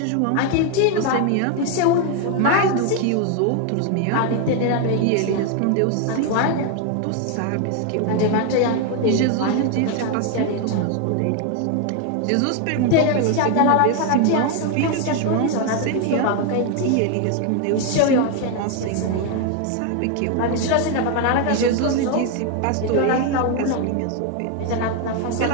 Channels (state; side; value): different; both; correlation 0.01